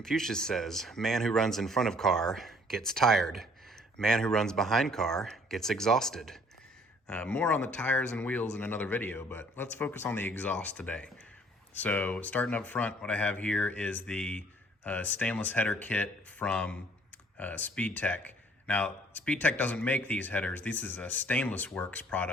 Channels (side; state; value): both; normal; correlation 0.59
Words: says, man who runs in front of car gets tired. Man who runs behind car gets exhausted. More on the tires and wheels in another video, but let's focus on the exhaust today. So starting up front, what I have here is the stainless header kit from SpeedTech. Now, SpeedTech doesn't make these headers. This is a Stainless Works